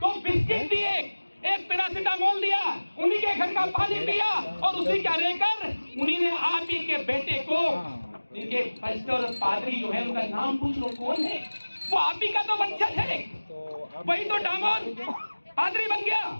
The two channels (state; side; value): inverted; both; correlation -1.00